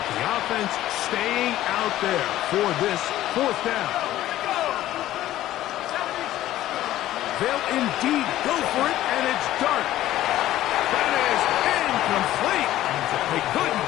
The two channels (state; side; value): quieter; right; 14.1 dB